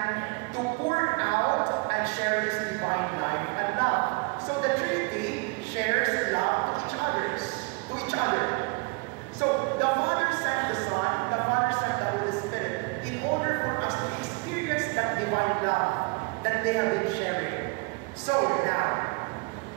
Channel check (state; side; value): quieter; left; 31.0 dB